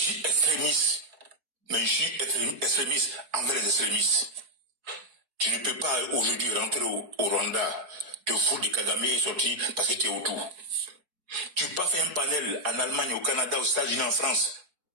suis extrémiste. Mais je suis extrémiste envers les extrémistes. Tu ne peux pas aujourd'hui rentrer au Rwanda, te foutre de Kagame et sortir parce que tu es autour. Tu peux pas faire un panel en Allemagne, au Canada, aux États-Unis, en France.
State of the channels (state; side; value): late; left; 4.6 ms